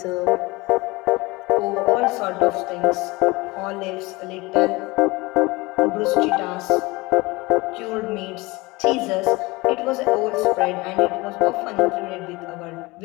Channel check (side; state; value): right; quieter; 23.0 dB